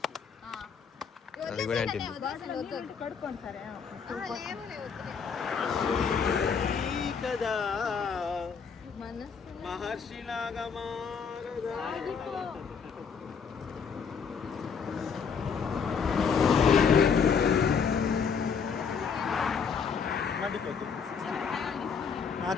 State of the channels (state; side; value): quieter; right; 6.2 dB